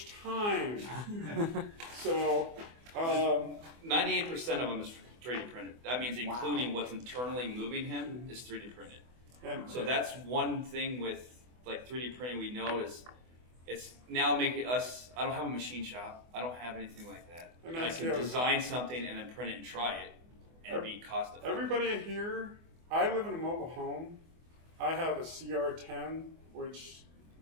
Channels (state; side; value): late; left; 24 ms